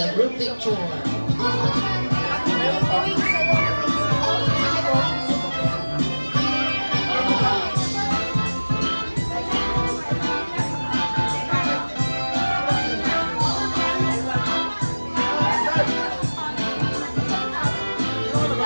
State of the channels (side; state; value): both; inverted; correlation -1.00